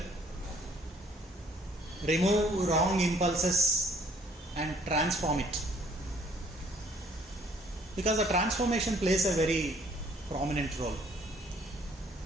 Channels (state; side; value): normal; both; correlation 0.60